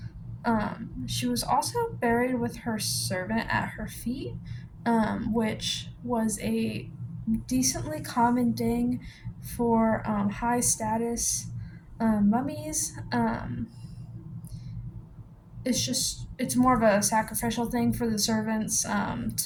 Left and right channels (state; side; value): identical; both; correlation 1.00